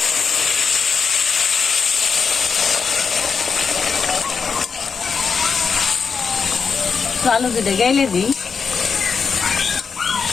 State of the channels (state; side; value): quieter; right; 5.7 dB